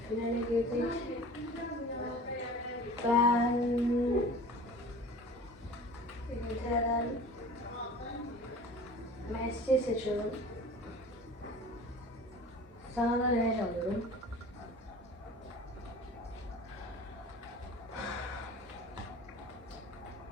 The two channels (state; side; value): normal; both; correlation 0.41